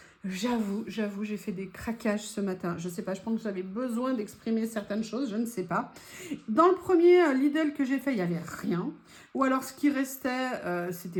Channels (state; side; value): identical; both; correlation 1.00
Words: J'avoue, j'ai fait des craquages ce matin. Je sais pas, je pense que j'avais besoin d'exprimer certaines choses, je ne sais pas. Dans le premier Lidl que j'ai fait, il n'y avait rien. Ou alors ce qui restait,